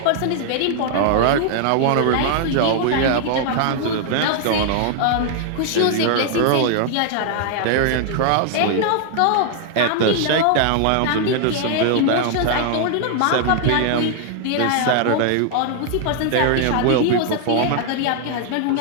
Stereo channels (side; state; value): both; different; correlation 0.00